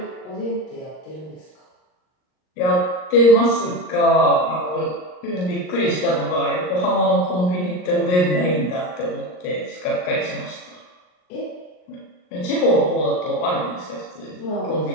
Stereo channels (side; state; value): right; late; 39 ms